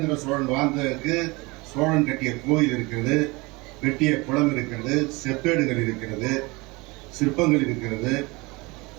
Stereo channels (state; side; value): quieter; left; 24.6 dB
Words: சோழன் வாழ்ந்ததற்கு சோழன் கட்டிய கோயில் இருக்கிறது, வெட்டிய குளம் இருக்கிறது, செப்பேடுகள் இருக்கிறது, சிற்பங்கள் இருக்கிறது.